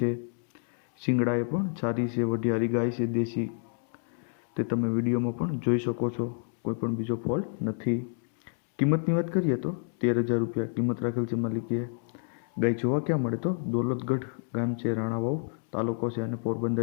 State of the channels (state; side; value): silent; right; 59 dB below the other